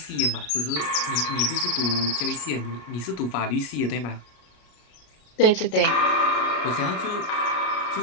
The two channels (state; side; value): late; right; 33 ms